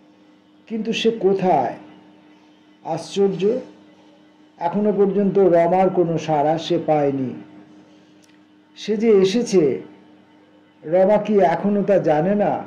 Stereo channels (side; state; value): both; identical; correlation 1.00